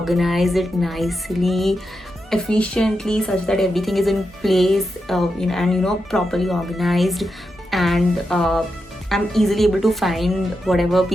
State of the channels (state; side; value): normal; both; correlation 0.87